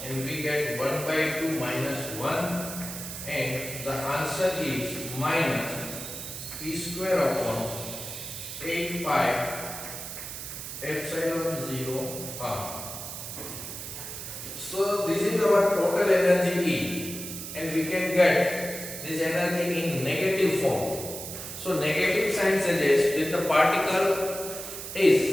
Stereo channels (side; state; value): right; noise; hiss, 8 dB below the sound